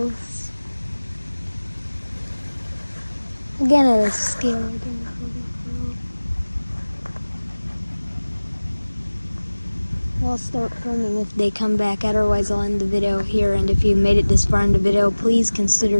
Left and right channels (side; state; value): both; inverted; correlation -1.00